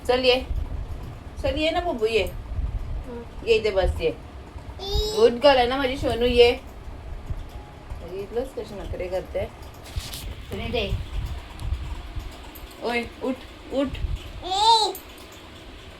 चल, ये चल, ये ना बब्बू, ये इथे बस. ये गुड गर्ल आहे ना माझी सोनू. ये बघितलंच कशी नखरे करते. तुम्ही दे. ओय उठ उठ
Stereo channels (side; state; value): both; identical; correlation 1.00